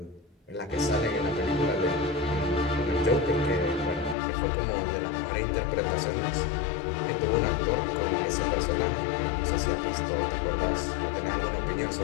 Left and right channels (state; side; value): drops out; right; at 4.2 s